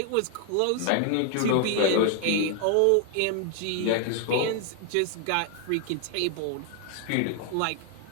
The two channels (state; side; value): different; both; correlation 0.00